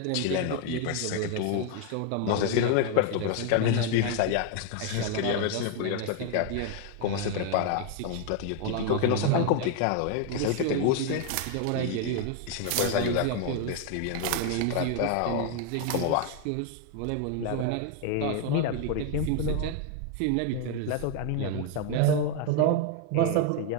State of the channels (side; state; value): both; different; correlation 0.01